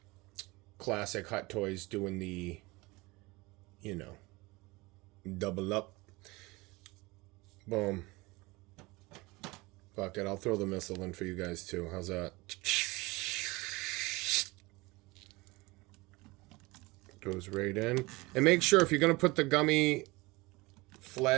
Classic Hot Toys doing the, you know, double up. Boom. Fuck it, I'll throw the missile in for you guys too. How's that? Goes right in. And make sure if you're going to put the gummy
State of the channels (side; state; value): left; quieter; 23.2 dB